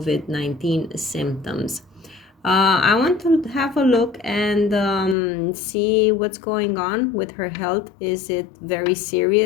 symptoms. I want to have a look and see what's going on with her health. Is it very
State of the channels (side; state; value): right; drops out; at 5.2 s